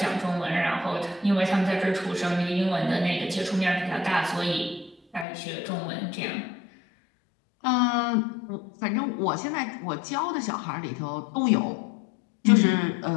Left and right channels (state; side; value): drops out; right; at 5.2 s